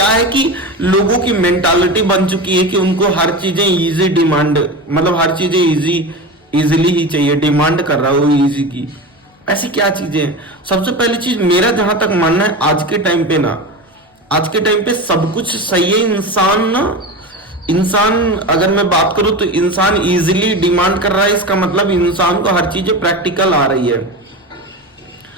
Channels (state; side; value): normal; both; correlation 0.26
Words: है कि लोगों की मेंटालिटी बन चुकी है कि उनको हर चीजें इजी डिमांड, मतलब हर चीजें इजीली ही चाहिए, डिमांड कर रहा है वो इजी की। ऐसी क्या चीजें हैं? सबसे पहली चीज मेरा जहां तक मानना है, आज के टाइम पे सब कुछ सही है। इंसान अगर मैं बात करूं तो इंसान इजीली डिमांड कर रहा है, इसका मतलब इंसान को हर चीजें प्रैक्टिकल आ रही है।